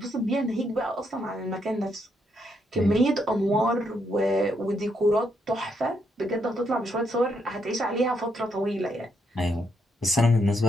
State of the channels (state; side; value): normal; both; correlation 0.77